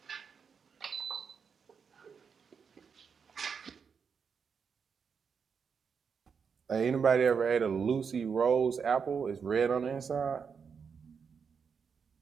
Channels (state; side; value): quieter; left; 6.2 dB